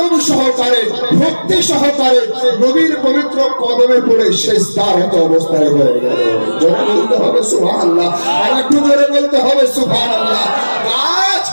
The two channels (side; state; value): both; inverted; correlation -1.00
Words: সহকারে, ভক্তি সহকারে নবীর পবিত্র কদমে পড়ে সিজদারত অবস্থায় হয়ে গেল। জোরে বলতে হবে সুবহানাল্লাহ, আর একটু জোরে বলতে হবে সুবহানাল্লাহ। গাছ